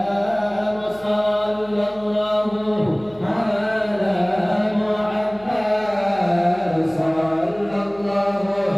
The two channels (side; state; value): left; noise; hum, 25 dB below the sound